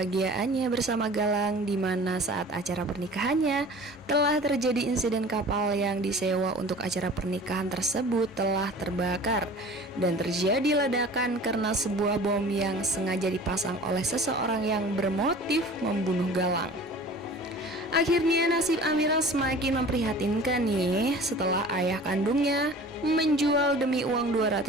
bersama Galang, di mana saat acara pernikahannya telah terjadi insiden kapal yang disewa untuk acara pernikahan tersebut telah terbakar dan terjadi ledakan karena sebuah bom yang sengaja dipasang oleh seseorang yang bermotif membunuh Galang. Akhirnya nasib Amira semakin memprihatinkan nih setelah ayah kandungnya menjual demi uang 200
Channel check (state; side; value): normal; both; correlation 0.43